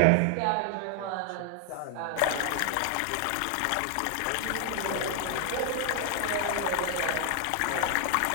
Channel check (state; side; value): different; both; correlation 0.00